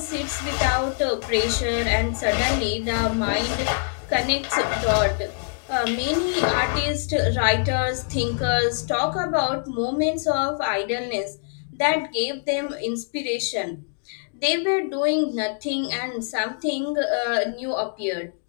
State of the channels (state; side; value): silent; right; digital silence